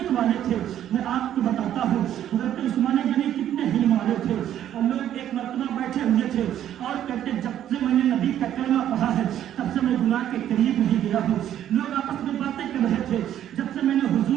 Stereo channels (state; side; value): quieter; left; 11.0 dB